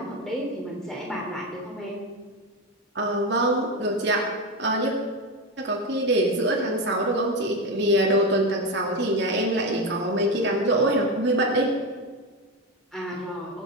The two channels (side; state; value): both; normal; correlation 0.15